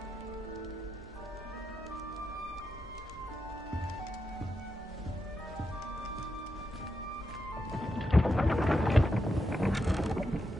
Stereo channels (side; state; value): both; normal; correlation 0.85